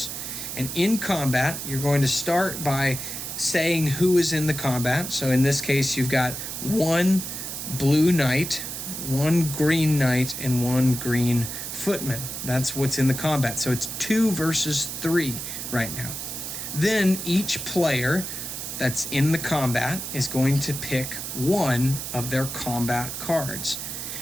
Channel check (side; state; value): right; noise; hiss, 6 dB below the sound